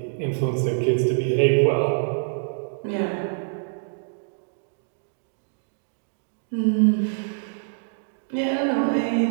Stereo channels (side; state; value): left; silent; digital silence